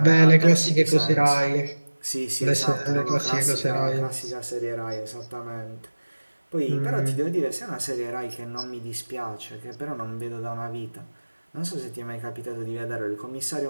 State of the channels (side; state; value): both; inverted; correlation -1.00